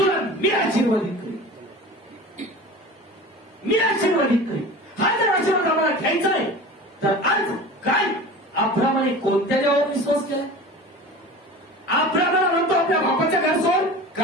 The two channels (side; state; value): both; normal; correlation 0.36